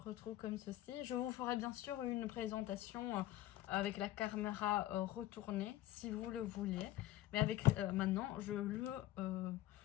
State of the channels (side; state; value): right; quieter; 14.8 dB